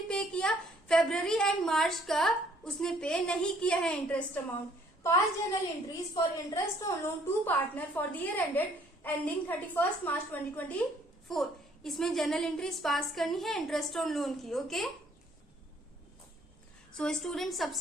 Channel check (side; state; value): both; normal; correlation 0.62